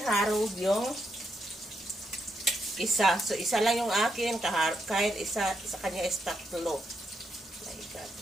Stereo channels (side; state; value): both; normal; correlation 0.80